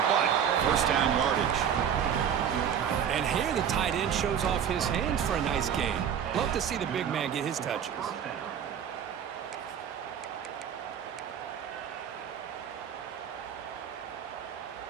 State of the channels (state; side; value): quieter; left; 8.5 dB